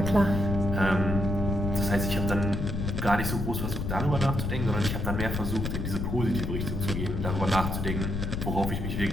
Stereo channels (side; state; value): left; noise; rumble, 2 dB below the sound